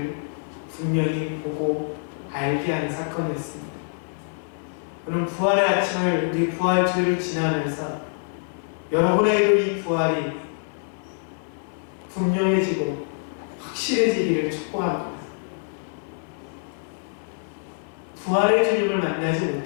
분명히 보고 알게 하는 사건이었습니다. 오늘 부활의 아침을, 우리 부활주일을 지나면서 여러분에게도 이 부활이 분명해지고 확실해지기를 축복합니다. 부활의 주님을 만나지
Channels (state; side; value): silent; right; 62 dB below the other